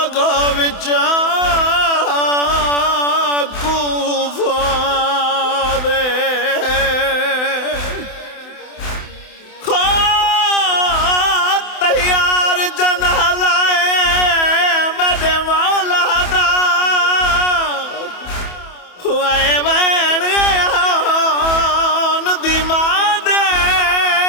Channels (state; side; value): late; right; 28 ms